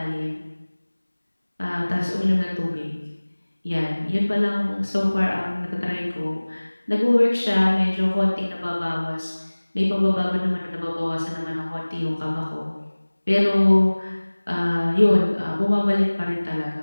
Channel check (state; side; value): inverted; both; correlation -1.00